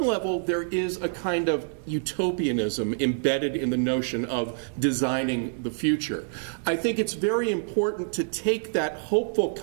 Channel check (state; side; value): silent; left; digital silence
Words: level there is a kind of utopianism embedded in the notion of designing the future, I think it's very important to take that hopeful